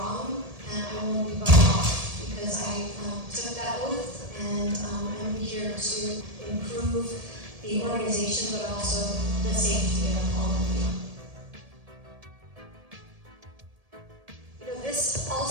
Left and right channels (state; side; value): late; left; 1.7 ms